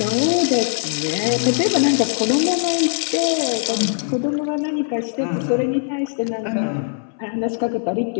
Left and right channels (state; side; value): silent; right; 65 dB below the other